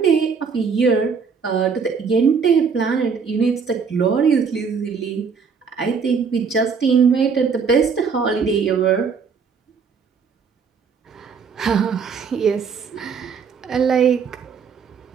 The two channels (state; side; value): quieter; left; 5.8 dB